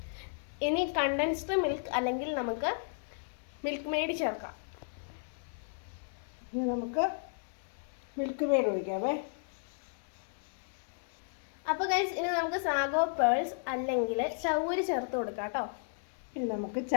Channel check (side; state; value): right; silent; 55 dB below the other